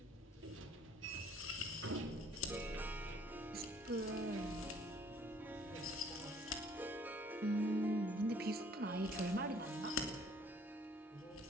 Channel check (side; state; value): both; normal; correlation 0.58